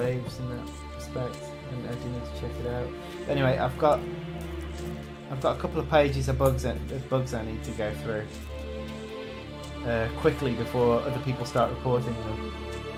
in that respect, and I do need to check it out. But anyway, I've got a couple of pages of bugs I need to go through quickly before other people start reporting them,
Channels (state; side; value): identical; both; correlation 1.00